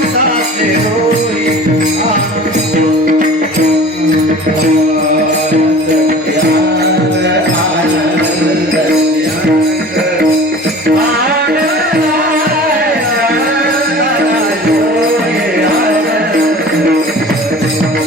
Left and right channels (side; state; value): both; normal; correlation 0.42